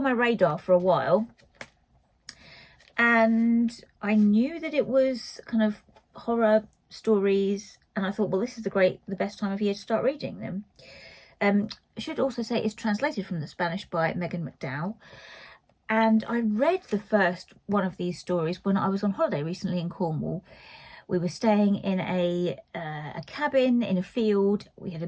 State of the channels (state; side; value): identical; both; correlation 1.00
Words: my radar for a while. And I knew that it was kind of horror stories, and I thought, well, this is the best time of year to start reading them. I should also say it's translated from the Spanish by Megan McDowell. And I read the first one of these stories when I was on holiday recently in Cornwall. We were staying in a cabin in a field. We had a